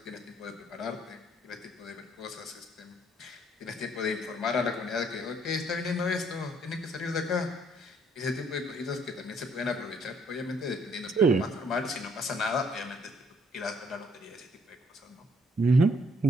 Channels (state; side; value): normal; both; correlation 0.66